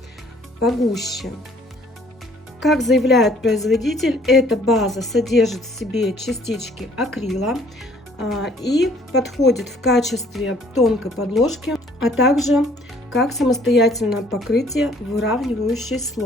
погуще. Как заявляет производитель, эта база содержит в себе частички акрила и подходит в качестве тонкой подложки, а также как самостоятельное покрытие, выравнивающий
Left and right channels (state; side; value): normal; both; correlation 0.59